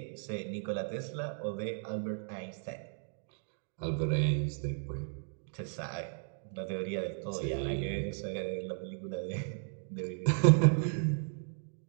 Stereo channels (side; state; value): left; silent; 54 dB below the other